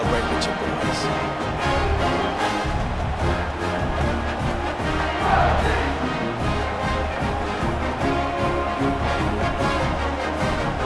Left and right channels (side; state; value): both; identical; correlation 1.00